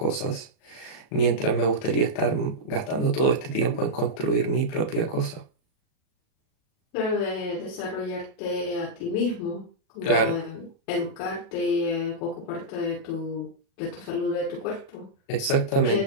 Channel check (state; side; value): late; right; 37 ms